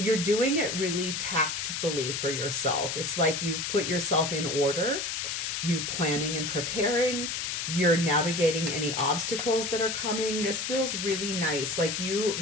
doing it really tactfully for yourself. It's like you've put yourself in order, you're planning and preparing, you're navigating any obstacles that are coming. This feels really nice. Like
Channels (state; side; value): noise; left; hiss, 2 dB below the sound